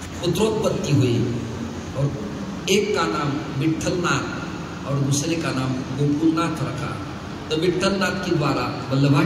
पुत्रोत्पत्ति हुई। और एक का नाम विठलनाथ और दूसरे का नाम गोकुलनाथ रखा। तो विठलनाथ के द्वारा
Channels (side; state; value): both; identical; correlation 1.00